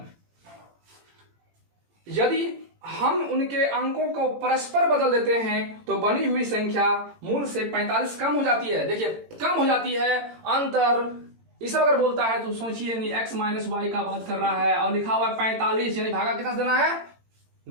यदि हम उनके अंकों को परस्पर बदल देते हैं तो बनी हुई संख्या मूल से 45 कम हो जाती है। देखिए कम हो जाती है, अंतर इस अगर बोलता है तो सोचिए नहीं, x माइनस वाई का बात कर रहा है और लिखा हुआ है 45, यानी भागा कितना देना है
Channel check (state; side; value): late; left; 18 ms